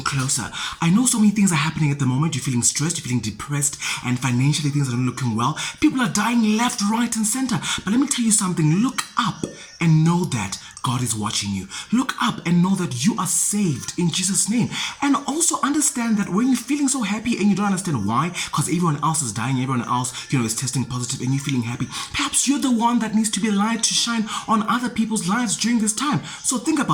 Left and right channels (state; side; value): identical; both; correlation 1.00